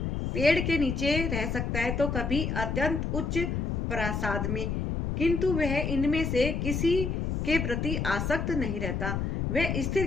पेड़ के नीचे रह सकता है तो कभी अत्यंत उच्च प्रासाद में, किंतु वह इनमें से किसी के प्रति आसक्त नहीं रहता। वह स्थिर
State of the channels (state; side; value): noise; left; rumble, 1 dB below the sound